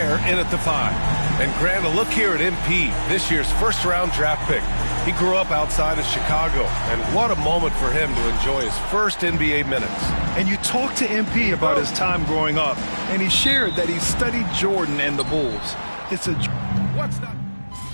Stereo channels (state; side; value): inverted; both; correlation -1.00